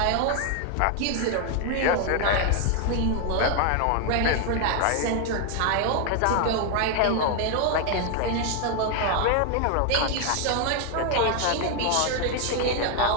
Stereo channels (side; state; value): both; different; correlation 0.01